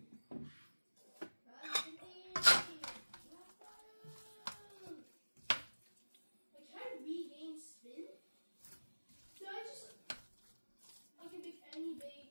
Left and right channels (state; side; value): inverted; both; correlation -1.00